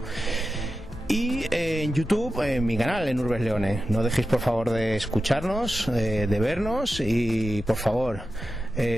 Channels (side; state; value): both; normal; correlation 0.92